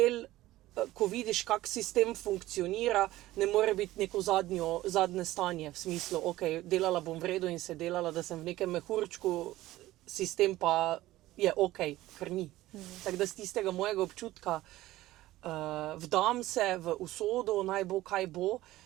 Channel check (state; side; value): quieter; left; 16.3 dB